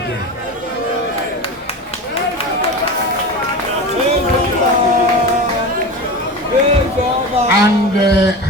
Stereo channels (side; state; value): both; normal; correlation 0.27